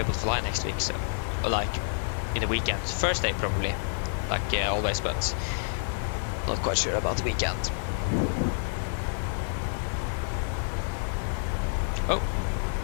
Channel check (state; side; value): silent; right; digital silence